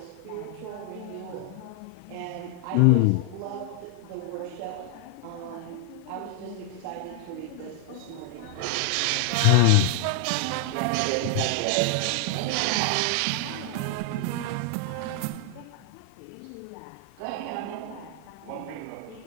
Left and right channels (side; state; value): both; different; correlation 0.00